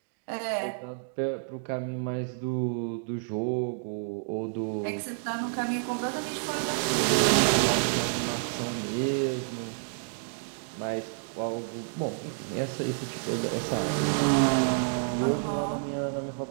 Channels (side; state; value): left; silent; digital silence